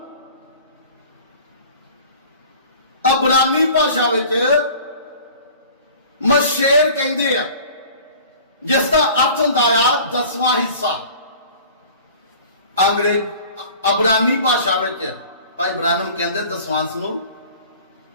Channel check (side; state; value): both; inverted; correlation -0.45